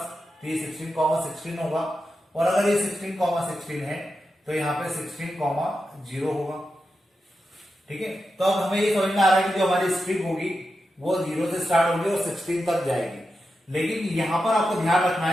तो ये 16, 16 होगा. और अगर ये 16, 16 है तो यहाँ पे 16, 0 होगा. ठीक है. तो अब हमें ये समझ में आ रहा है कि जो हमारी स्ट्रिप होगी वो 0 से स्टार्ट होगी और 16 तक जाएगी. लेकिन यहाँ पर आपको ध्यान रखना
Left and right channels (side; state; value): both; normal; correlation 0.89